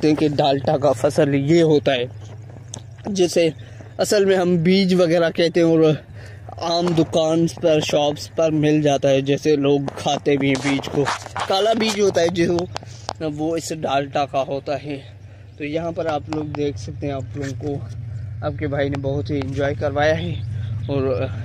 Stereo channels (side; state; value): both; identical; correlation 1.00